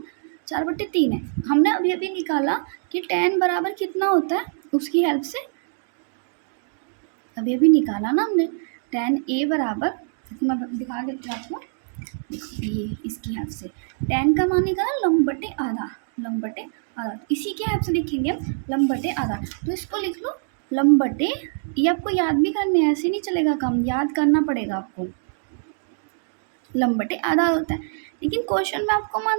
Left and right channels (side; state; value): left; silent; digital silence